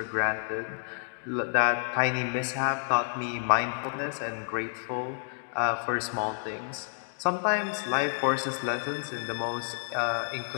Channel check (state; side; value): silent; right; digital silence